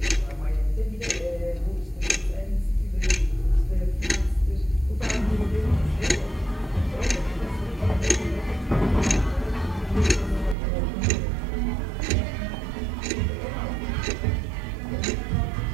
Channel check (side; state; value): left; drops out; at 10.6 s